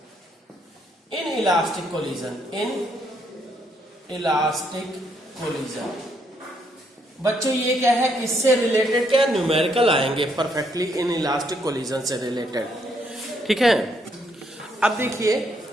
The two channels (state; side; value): normal; both; correlation 0.73